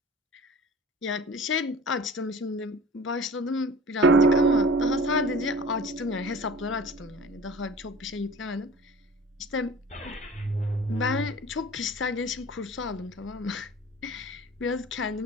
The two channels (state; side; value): normal; both; correlation 0.42